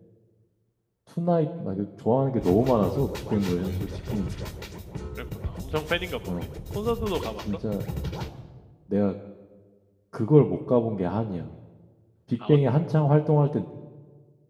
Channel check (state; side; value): identical; both; correlation 1.00